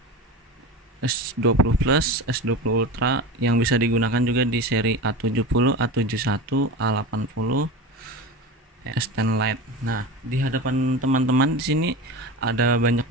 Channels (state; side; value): normal; both; correlation 0.28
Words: S20 Plus, S20 Ultra yang bisa digunakan juga di seri A70, A71, A80, S10 Lite. Nah, di hadapan teman-teman di sini ada banyak